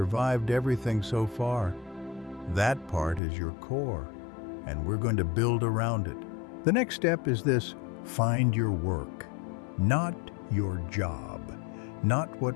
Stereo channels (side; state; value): right; drops out; at 3.2 s